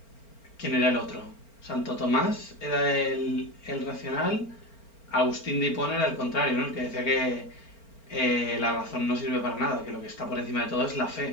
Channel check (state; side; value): late; right; 4.4 ms